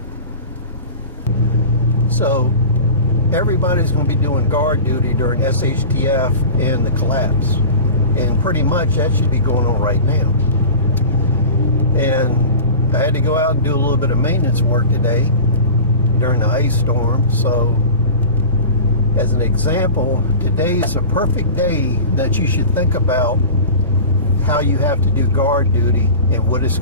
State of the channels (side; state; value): both; inverted; correlation -0.34